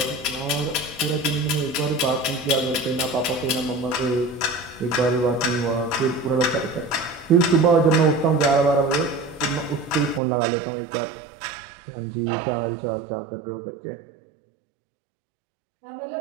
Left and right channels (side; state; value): left; drops out; at 10.2 s